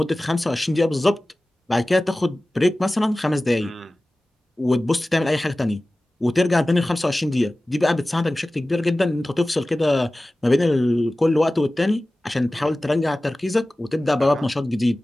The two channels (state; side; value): normal; both; correlation 0.97